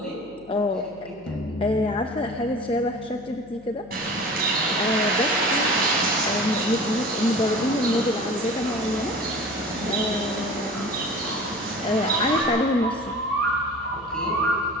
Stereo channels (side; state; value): left; noise; hum, 25 dB below the sound